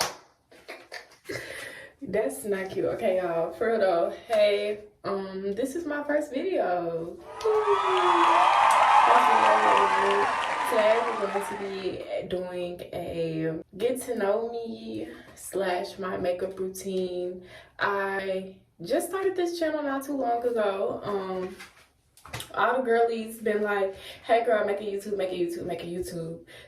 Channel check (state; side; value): identical; both; correlation 1.00